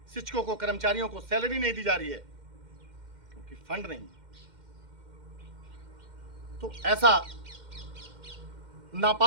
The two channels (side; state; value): left; late; 2.1 ms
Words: शिक्षकों को, कर्मचारियों को सैलरी नहीं दी जा रही है क्योंकि फंड नहीं। तो ऐसा